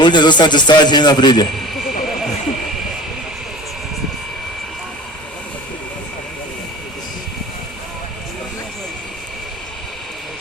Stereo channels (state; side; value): normal; both; correlation 0.40